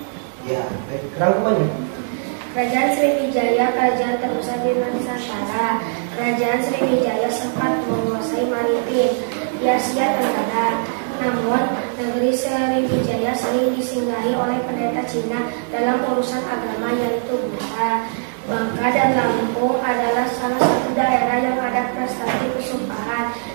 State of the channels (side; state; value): left; silent; 62 dB below the other